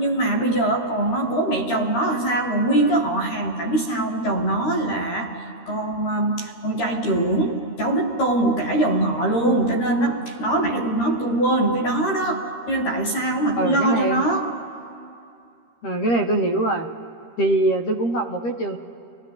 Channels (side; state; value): right; late; 13 ms